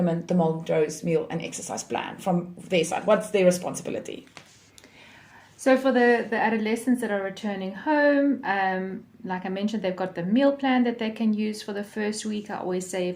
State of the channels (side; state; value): both; identical; correlation 1.00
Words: the Montrose meal and exercise plan from their side? What's their responsibility? So for the adolescents that are returning home, like I mentioned, they've got the meal plan that they can use for the first week. I always say